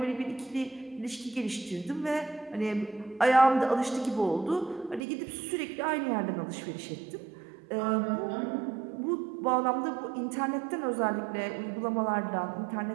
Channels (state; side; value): drops out; left; at 5.0 s